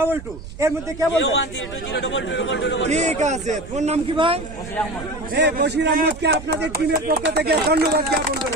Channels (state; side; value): noise; right; rumble, 13 dB below the sound